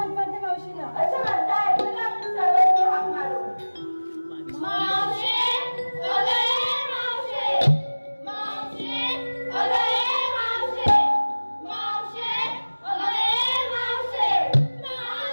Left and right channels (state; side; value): inverted; both; correlation -1.00